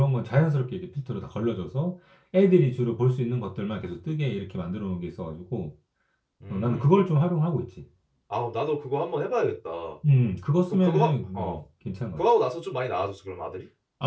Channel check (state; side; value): identical; both; correlation 1.00